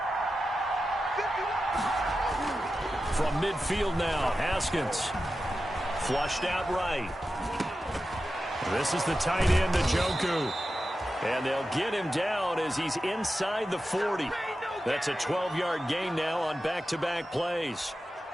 From midfield now, Haskins. Flushed out right. This is the tight end, Njoku. And they'll get him down as he's inside the 40. That's a 12-yard gain now on back-to-back plays.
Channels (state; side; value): normal; both; correlation 0.92